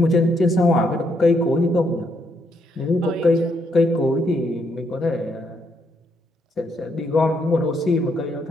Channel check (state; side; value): normal; both; correlation 0.74